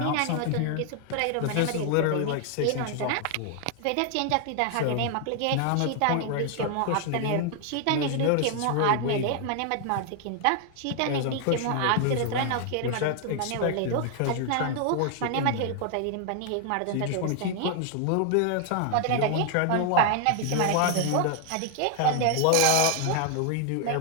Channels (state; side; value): different; both; correlation 0.00